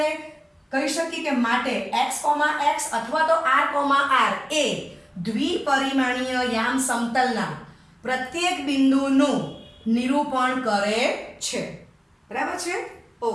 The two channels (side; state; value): both; identical; correlation 1.00